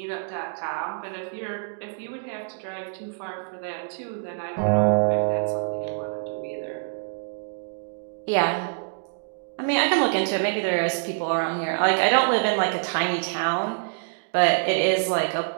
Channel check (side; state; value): left; silent; digital silence